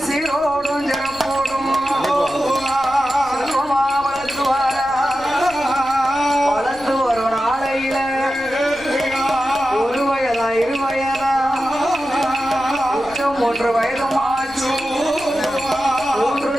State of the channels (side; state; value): left; noise; rumble, 21 dB below the sound